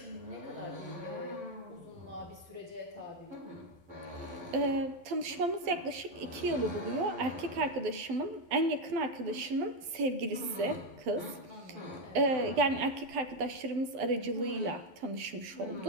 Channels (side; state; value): left; late; 12 ms